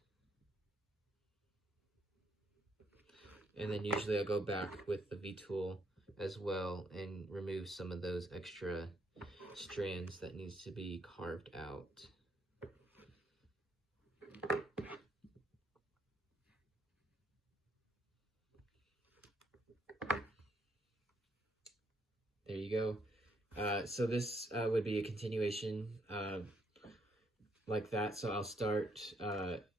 And then usually I'll go back with the V tool as well and remove some of those extra strands that needs to be carved out. There you go. So this would be a continuation like that. So I'll start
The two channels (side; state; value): both; normal; correlation 0.72